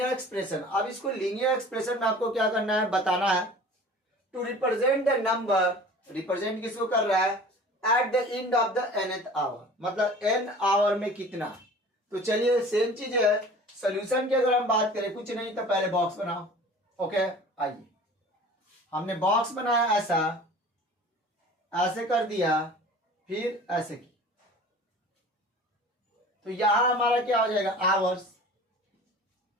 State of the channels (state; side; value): normal; both; correlation 0.43